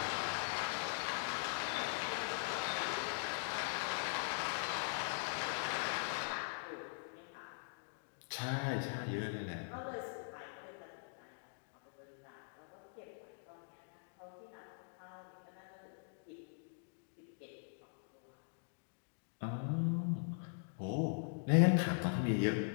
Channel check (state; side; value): silent; right; digital silence